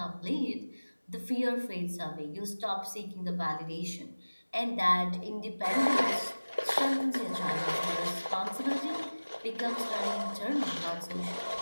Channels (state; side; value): inverted; both; correlation -1.00